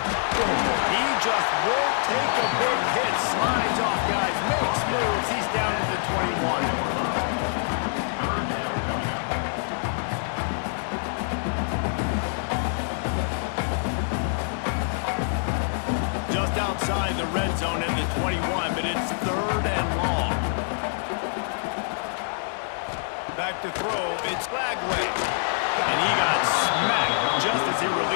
He just won't take a big hit. Slides off, guys. Makes moves. He's down to the 21. Just outside the red zone in the 21, but it's 3rd and long. Back to throw. It's Flagway. And he got smacked just as he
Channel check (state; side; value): silent; right; 61 dB below the other